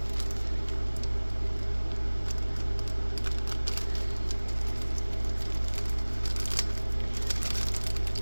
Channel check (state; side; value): inverted; both; correlation -1.00